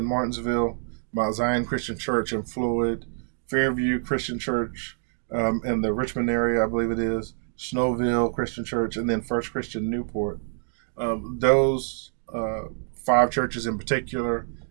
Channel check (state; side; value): silent; left; digital silence